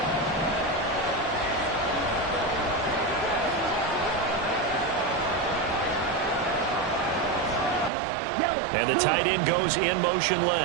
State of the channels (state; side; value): drops out; left; at 7.9 s